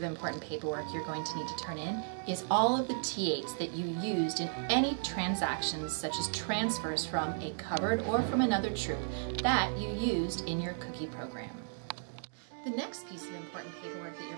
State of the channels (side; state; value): left; silent; digital silence